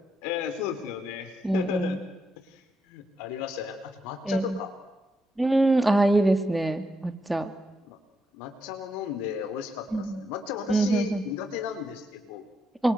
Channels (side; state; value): both; normal; correlation 0.82